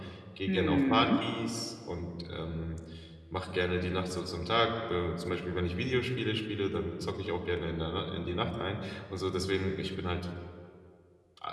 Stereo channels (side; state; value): both; identical; correlation 1.00